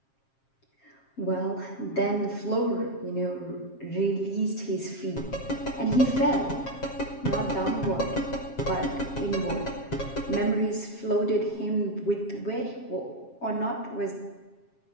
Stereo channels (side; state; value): right; late; 7.5 ms